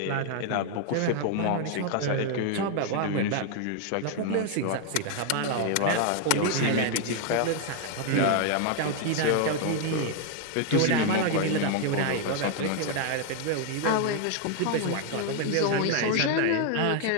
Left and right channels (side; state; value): both; different; correlation 0.00